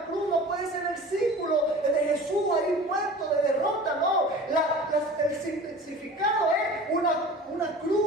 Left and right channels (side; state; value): both; normal; correlation 0.39